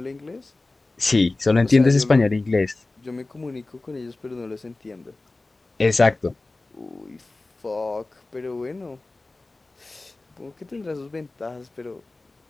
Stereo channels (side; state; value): right; quieter; 3.2 dB